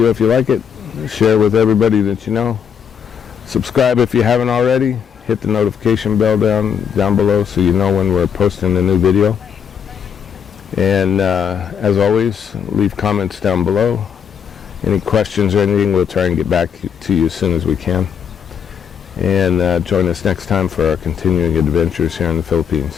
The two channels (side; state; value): right; quieter; 7.7 dB